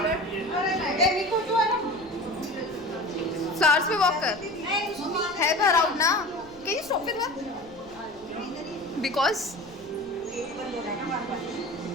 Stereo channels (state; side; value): noise; left; rumble, 25 dB below the sound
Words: फ्लावर्स पे वॉक कर। हेल्प हर आउट ना। Can you stop with that? Because